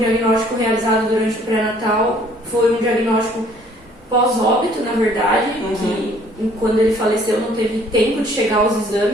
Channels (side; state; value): both; normal; correlation 0.59